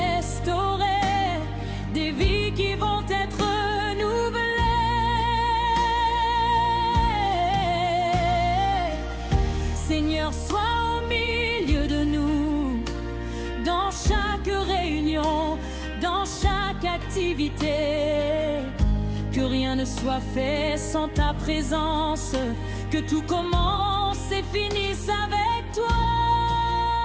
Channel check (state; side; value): identical; both; correlation 1.00